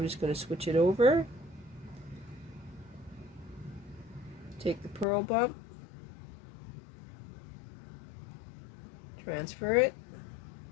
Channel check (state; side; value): drops out; right; at 5.1 s